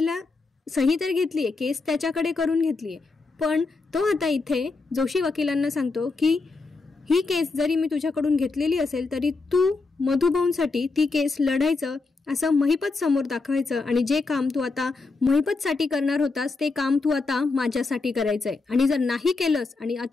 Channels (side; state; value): right; quieter; 3.9 dB